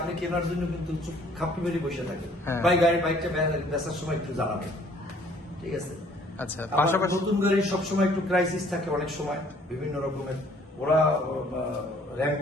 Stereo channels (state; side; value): normal; both; correlation 0.59